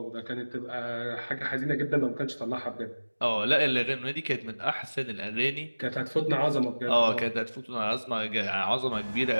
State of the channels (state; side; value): inverted; both; correlation -1.00